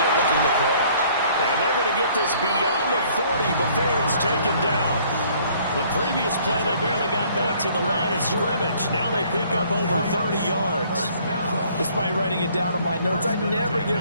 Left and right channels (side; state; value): both; inverted; correlation -0.59